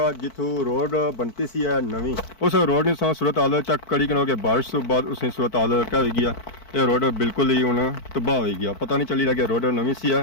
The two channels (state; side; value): late; right; 4.5 ms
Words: जिथों रोड बनती सी है नवी उस रोड ने सूरत हाल चक कड़ी के बारिश तो बाद उसने सूरत हाल क्या हो गया ये रोड बिल्कुल ही हूँ तबाह हो गया पता नहीं चली रहा कि रोड नवी सी